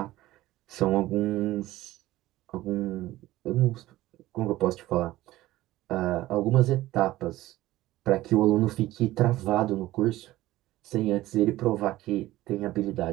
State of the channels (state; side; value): quieter; left; 16.4 dB